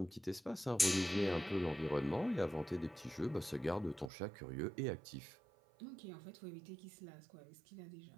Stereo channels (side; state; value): left; drops out; at 4.1 s